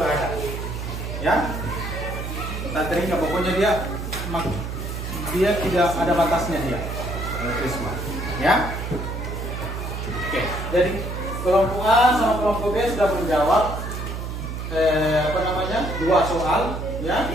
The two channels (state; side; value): noise; right; hum, 5 dB below the sound